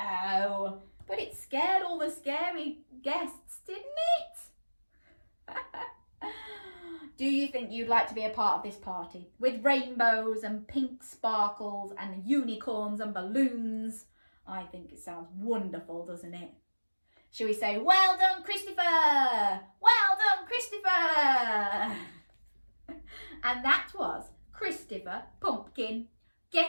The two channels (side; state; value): both; inverted; correlation -1.00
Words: But it scared all the scary guests, didn't it? Do you think you'd like to be a part of this party? With rainbows and pink sparkles and unicorns and balloons? I think it sounds wonderful, doesn't it? Shall we say, well done, Christopher! Well done, Christopher! And that was Christopher Pumpkin